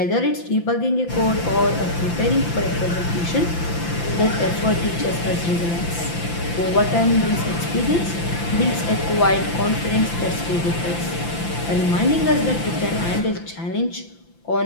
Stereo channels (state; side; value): late; right; 5.9 ms